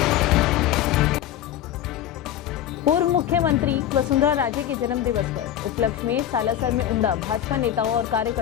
पूर्व मुख्यमंत्री वसुंधरा राजे के जन्म दिवस पर उपलक्ष्य में सालासर में उमड़ा भाजपा नेताओं और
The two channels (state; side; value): quieter; right; 11.2 dB